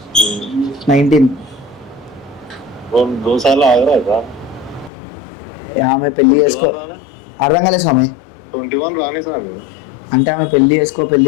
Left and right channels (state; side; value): drops out; right; at 4.9 s